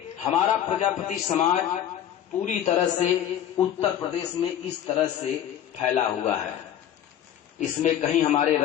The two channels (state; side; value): quieter; right; 10.4 dB